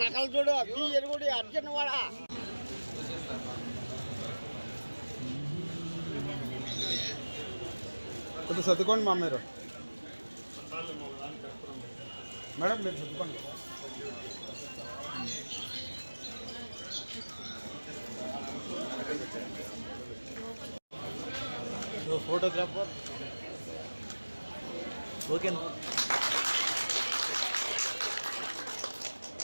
నకలు చూడు ఎరుగుడి అర్జున్ వాడ కొంచెం సర్దుకోండి మా మీరు మేడం మీరు సర్దుకోండి. ఫోటోగ్రాఫర్ ఓకే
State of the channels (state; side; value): inverted; both; correlation -1.00